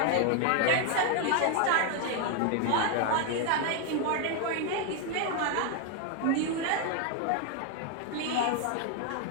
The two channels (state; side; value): different; both; correlation 0.00